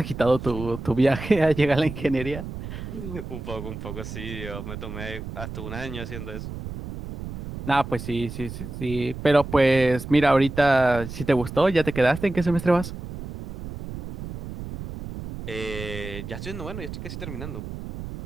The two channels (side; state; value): right; noise; rumble, 9 dB below the sound